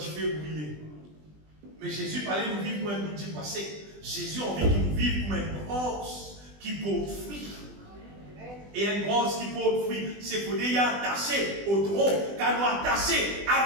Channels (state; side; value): late; left; 20 ms